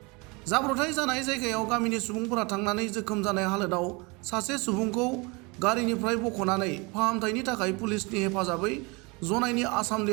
जाब्रबथाय जानाय जायगायाव गामिनि सुबुंफोरा थांनानै जोखोम जानाय हालोदाव सासे सुबुंखौ गारिनिफ्राय बख'नानै फाहामथायनि थाखाय पुलिसनि हेफाजाबै जनाइनि आसाम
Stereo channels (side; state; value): left; quieter; 27.7 dB